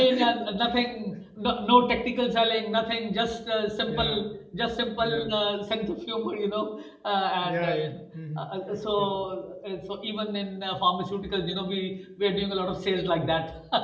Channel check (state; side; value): identical; both; correlation 1.00